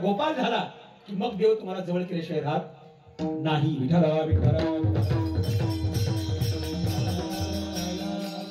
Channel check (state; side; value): identical; both; correlation 1.00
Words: झाला की मग देव तुम्हाला जवळ केल्याशिवाय राहत नाही. विठ्ठला विठ्ठला.